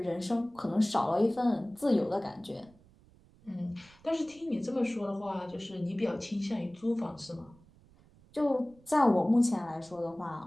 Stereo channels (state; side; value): noise; right; rumble, 27 dB below the sound